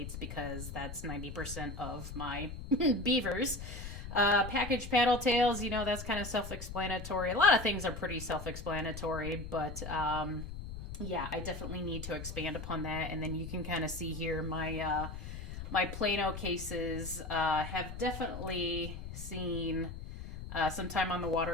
because that's 90% of my beavers. Package paddle tails, you know, that's kind of self-explanatory. A lot of things are pretty self-explanatory, but yeah, I definitely need to expand upon that. And then you can kind of see here my my Plano cases have definitely seen some time on the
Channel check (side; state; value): left; noise; rumble, 9 dB below the sound